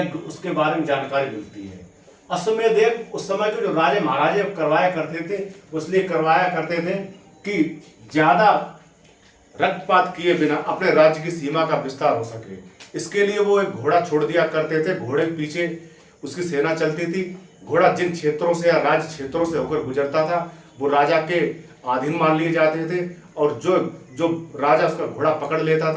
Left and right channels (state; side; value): identical; both; correlation 1.00